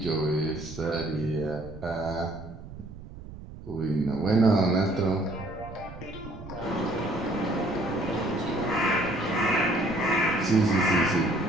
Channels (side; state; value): right; noise; rumble, 14 dB below the sound